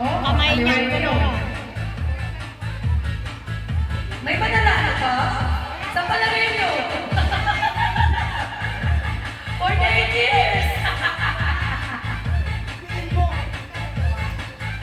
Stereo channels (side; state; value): both; identical; correlation 1.00